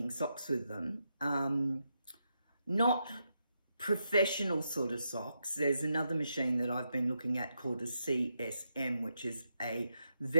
socks with them. Not professional sort of socks. There's another machine that I've been looking at called a CSM, which is a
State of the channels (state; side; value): inverted; both; correlation -0.83